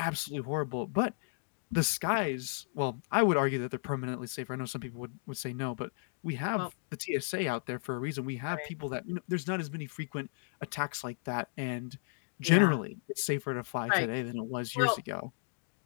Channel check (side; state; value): right; silent; digital silence